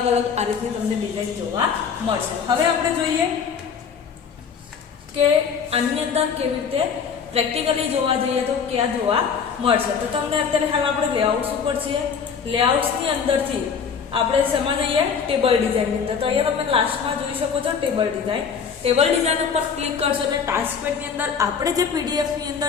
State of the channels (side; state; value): right; quieter; 6.4 dB